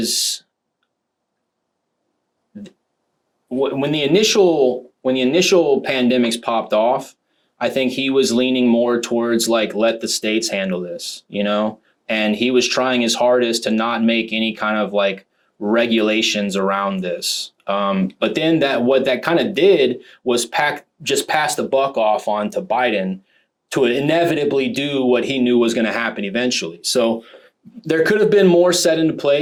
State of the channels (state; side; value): identical; both; correlation 1.00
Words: when the initial pandemics popped off, I think he was leaning more towards like, let the states handle this, you know, and he was trying his hardest to not make any kind of like regulations around this. But then what that kind of did was just pass the buck off onto Biden to inevitably do what he knew was going to happen eventually. So there could have been more set into